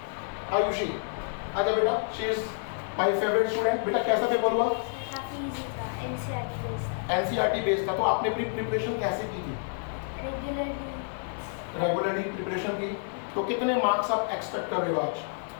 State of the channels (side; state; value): right; silent; 59 dB below the other